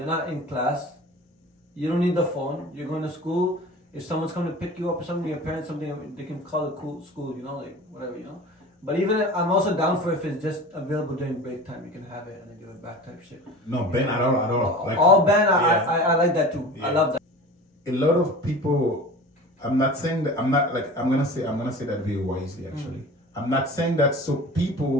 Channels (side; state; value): both; normal; correlation 0.37